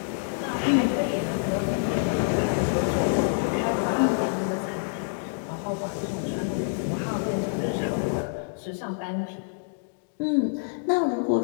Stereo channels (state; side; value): silent; right; digital silence